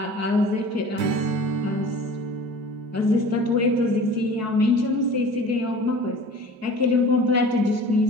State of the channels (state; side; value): late; left; 4.6 ms